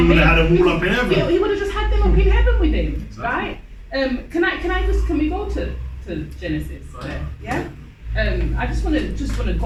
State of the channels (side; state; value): both; identical; correlation 1.00